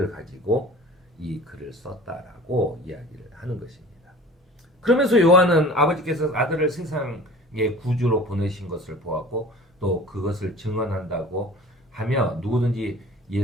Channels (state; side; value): normal; both; correlation 0.43